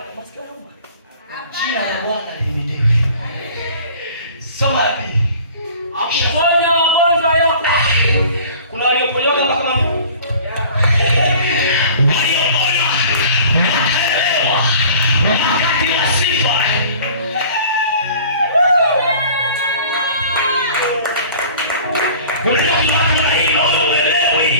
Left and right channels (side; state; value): both; inverted; correlation -0.46